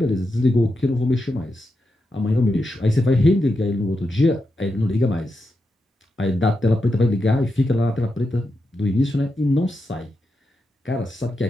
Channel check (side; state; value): both; normal; correlation 0.87